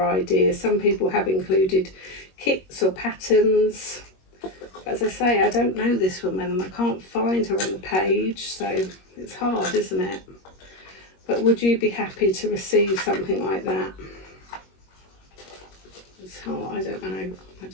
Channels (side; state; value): right; late; 21 ms